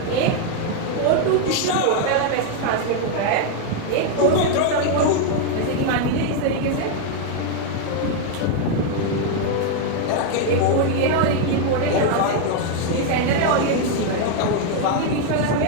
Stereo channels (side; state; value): both; different; correlation 0.00